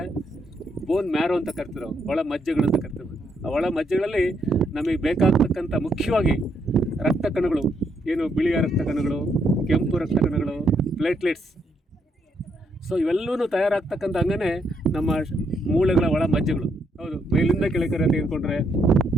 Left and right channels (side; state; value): both; normal; correlation 0.75